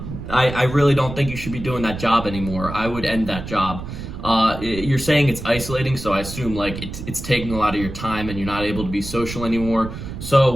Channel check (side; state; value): right; noise; rumble, 9 dB below the sound